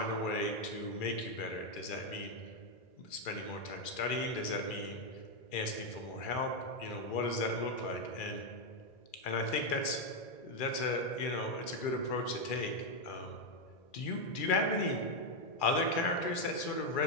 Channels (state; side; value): late; right; 2.4 ms